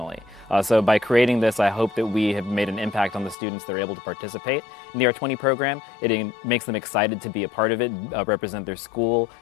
So by creating this, I hope that we have made an impact on the students that are able to participate in the R20 program. It makes them excited to be a part of it, represent their school,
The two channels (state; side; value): drops out; right; at 3.4 s